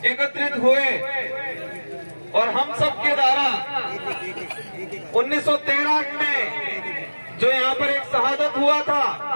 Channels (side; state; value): both; inverted; correlation -1.00